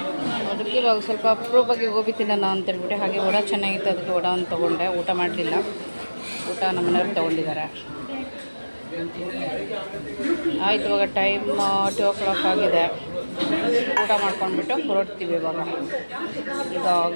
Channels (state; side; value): inverted; both; correlation -1.00